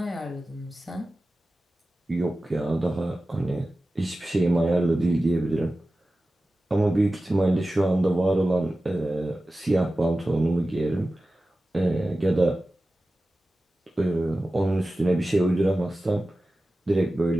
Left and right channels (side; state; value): both; normal; correlation 0.95